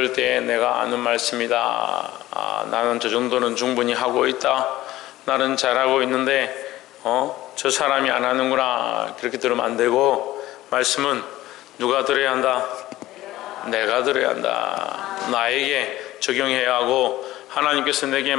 때 내가 아는 말씀이다. 나는 저 정도는 충분히 하고 있다. 나는 잘하고 있는데 저 사람이 안 하는구나. 그렇게 들으면 안 되고, 말씀은 누가 들어야 한다? 내가 들어야 한다. 나에게 적용해야 하고 하나님께서 내게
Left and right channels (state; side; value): quieter; right; 16.0 dB